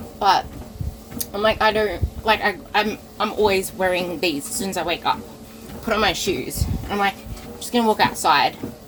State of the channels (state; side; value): identical; both; correlation 1.00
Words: but I'm like, I don't, like, I'm always wearing these as soon as I wake up. Put on my shoes. I'm like, I'm just going to walk outside.